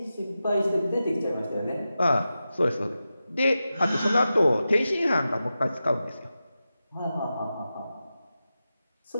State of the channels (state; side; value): inverted; both; correlation -0.92